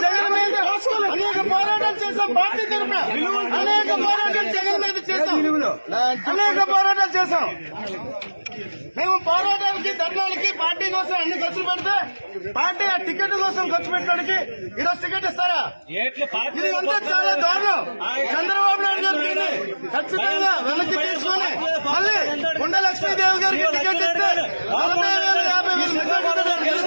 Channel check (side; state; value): both; inverted; correlation -1.00